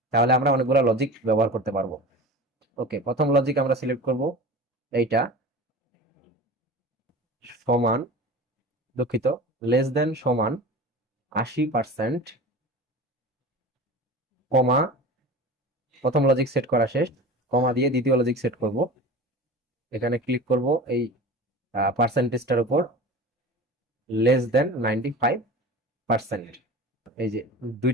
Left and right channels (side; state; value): both; normal; correlation 0.35